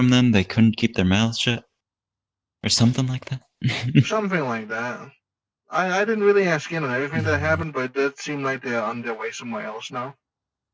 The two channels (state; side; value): identical; both; correlation 1.00